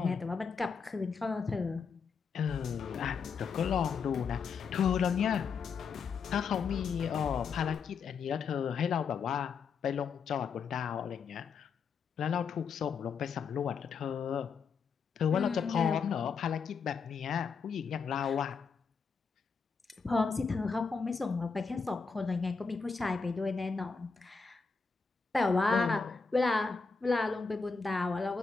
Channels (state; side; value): quieter; right; 5.4 dB